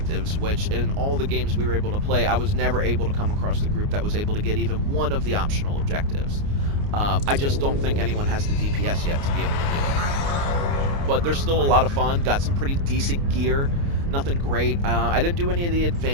which in all the games we were able to play, I was never able to come across the group that was able to get even one of the optional objectives. I just don't think anyone has the DPS yet to be able to do it. But they're still a lot of fun. Got some pretty decent gear. Nothing great. I didn't do any of the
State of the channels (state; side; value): late; left; 29 ms